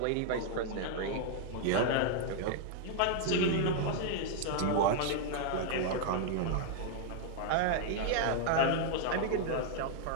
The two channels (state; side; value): different; both; correlation 0.00